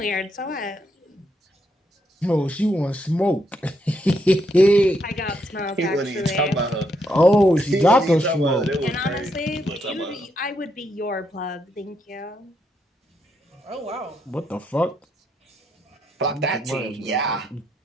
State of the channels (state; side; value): normal; both; correlation 0.78